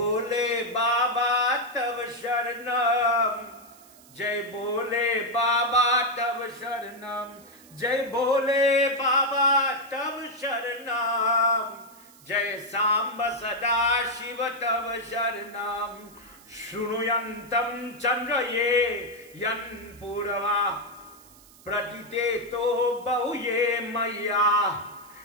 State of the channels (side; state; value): right; noise; hiss, 24 dB below the sound